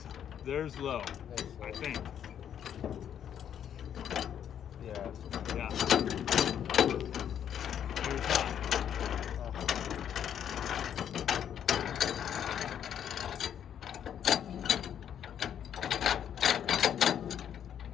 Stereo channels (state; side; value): quieter; right; 9.3 dB